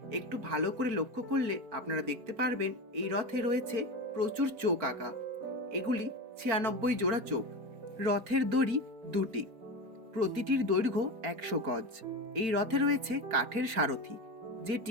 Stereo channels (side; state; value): left; late; 4.5 ms